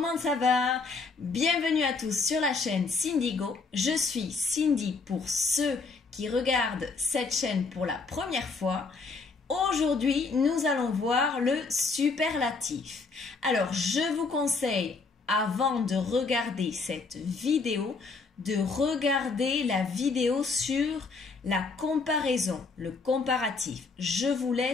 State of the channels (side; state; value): right; quieter; 4.3 dB